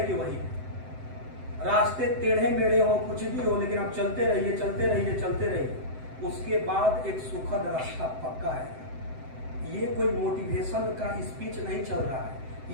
कि वही है, रास्ते टेढ़े मेढ़े हो, कुछ भी हो, लेकिन आप चलते रहिए चलते रहिए चलते रहिए, उसके बाद एक सुखद रास्ता पक्का है। ये कोई मोटिवेशन का स्पीच नहीं चल रहा है,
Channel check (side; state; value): left; late; 7.8 ms